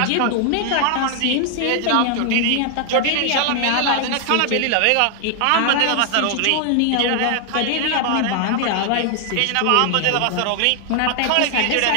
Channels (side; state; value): both; different; correlation 0.00